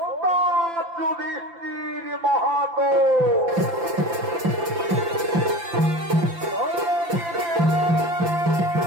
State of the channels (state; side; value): late; left; 5.8 ms